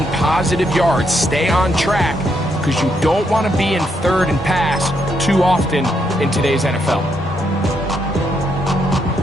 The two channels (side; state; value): both; normal; correlation 0.77